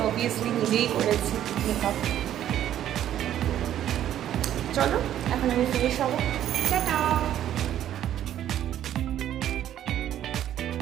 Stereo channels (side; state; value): left; quieter; 11.4 dB